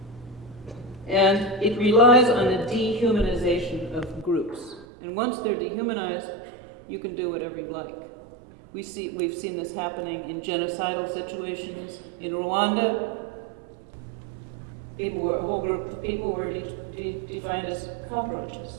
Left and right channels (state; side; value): drops out; left; at 4.9 s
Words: And it relies on the dehumanization of groups. And once they're dehumanized, you can do whatever you like. We've seen this happening in genocidal situations. In Rwanda, a whole group of people were defined as